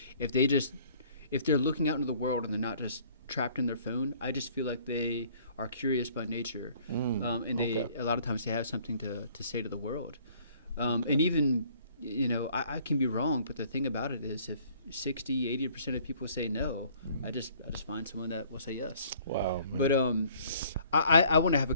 if they're looking out into the world and they're not just trapped in their phone, I just feel like they are curious by nature, and okay. a lot of times they have something to say to the world, and even. I can be wrong, but the thing about it is if 60-80% of people say no, I just find someone that will say yes. Wow. Man. But I want to have a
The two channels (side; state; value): both; inverted; correlation -0.57